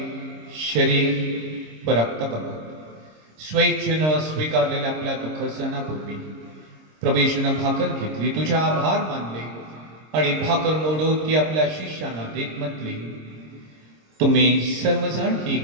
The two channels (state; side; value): late; left; 26 ms